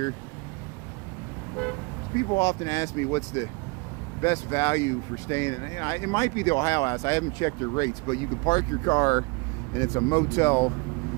People often ask me what's the best value for staying in. It might be the Ohio House. I haven't checked their rates, but you can park your car and it's a motel,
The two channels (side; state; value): left; quieter; 29.1 dB